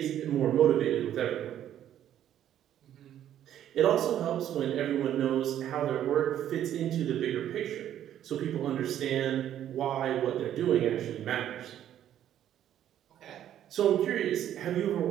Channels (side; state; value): left; quieter; 11.0 dB